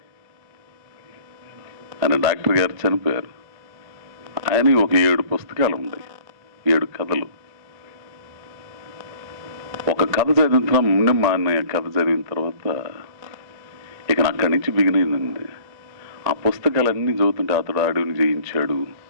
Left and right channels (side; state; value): left; late; 1.9 ms